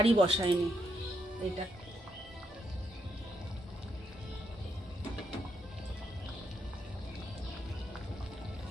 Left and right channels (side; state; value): both; normal; correlation 0.78